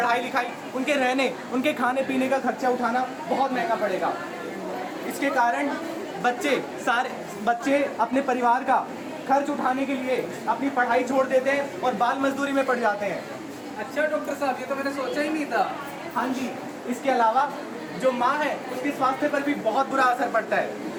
लिखाई, उनके रहने, उनके खाने पीने का खर्चा उठाना बहुत महंगा पड़ेगा। इसके कारण बच्चे अपने परिवार का खर्च उठाने के लिए अपनी पढ़ाई छोड़ देते हैं और बाल मजदूरी में पड़ जाते हैं। अच्छा डॉक्टर साहब, ये तो मैंने सोचा ही नहीं था। हाँ जी, इसके अलावा जो माँ है उसके स्वास्थ्य पर भी बहुत बुरा असर पड़ता है।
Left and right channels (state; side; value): identical; both; correlation 1.00